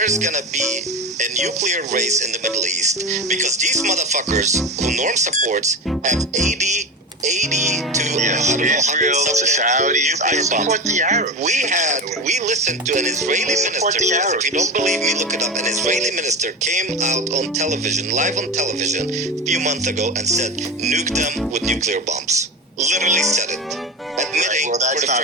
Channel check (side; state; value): both; normal; correlation 0.23